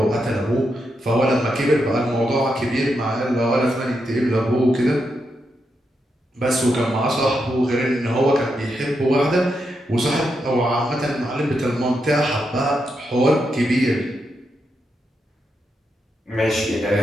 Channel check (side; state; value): both; normal; correlation 0.83